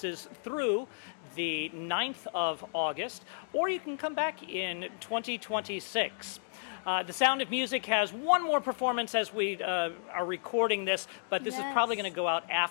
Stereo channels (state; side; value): silent; right; digital silence